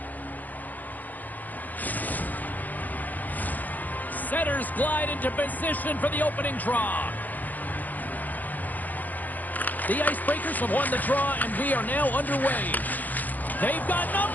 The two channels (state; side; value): late; right; 0.083 ms